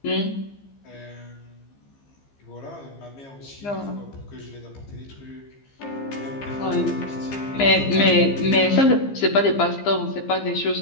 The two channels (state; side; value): late; right; 15 ms